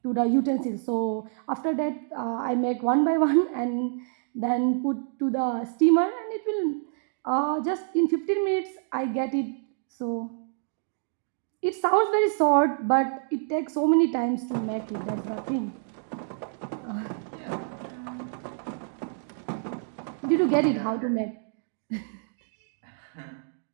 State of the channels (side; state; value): left; silent; digital silence